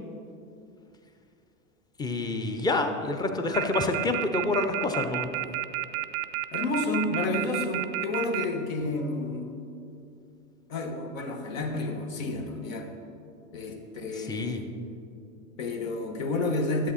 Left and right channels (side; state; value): both; normal; correlation 0.16